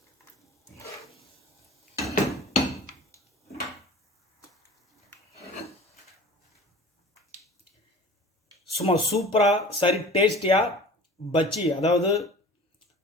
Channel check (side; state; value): both; normal; correlation 0.41